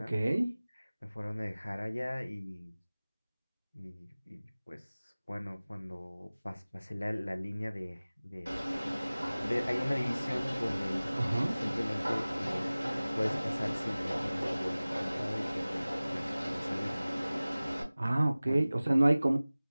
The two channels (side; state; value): both; inverted; correlation -0.99